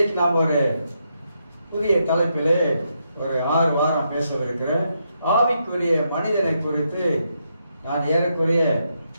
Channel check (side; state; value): both; inverted; correlation -0.80